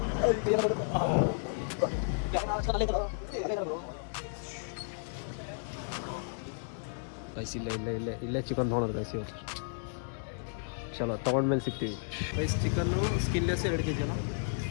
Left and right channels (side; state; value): right; silent; digital silence